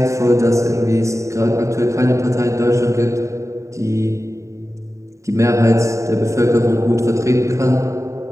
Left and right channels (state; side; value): late; left; 0.15 ms